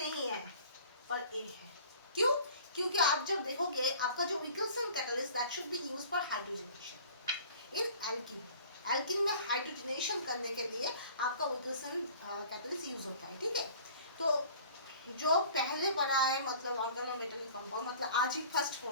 है पर ये है। क्यों? क्योंकि आप जब देखोगे आपका जो Wilkinson catalyst that should be used for hydrogenation in alkene, alkene में हाइड्रोजनेशन करने के लिए आपका विल्किंसन कैटलिस्ट यूज होता है, ठीक है। तो जो पहले पढ़ा है मतलब ऑर्गेनोमेटेलिक कंपाउंड, मतलब आज ही फर्स्ट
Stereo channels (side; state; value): both; inverted; correlation -0.47